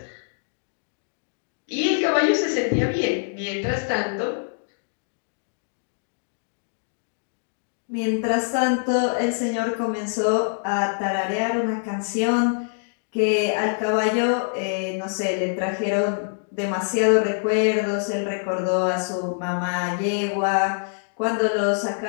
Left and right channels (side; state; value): right; silent; digital silence